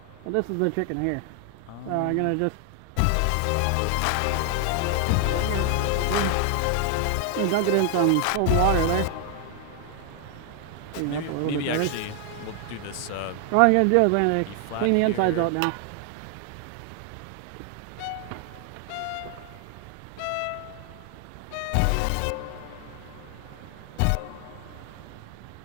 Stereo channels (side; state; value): both; different; correlation 0.00